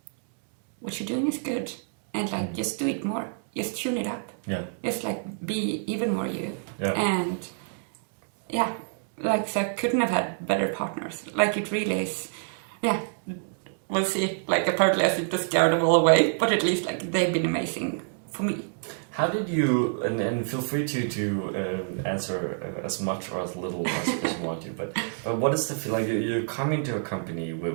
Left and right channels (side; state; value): left; silent; 60 dB below the other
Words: what you're doing is good, and like just do it more, just tune it up, just like be even more you, and like, so I couldn't have had better partners. Like, it really is, we'll see. Like, apparently I seem to scare them all away, but at least, like, they've been amazing for me. How did you, and feel free to answer as much or as little as you want to, but what is the feel like? You're coming to a company